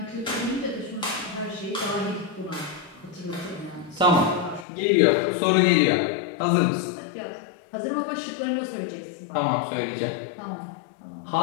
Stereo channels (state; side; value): drops out; right; at 4.7 s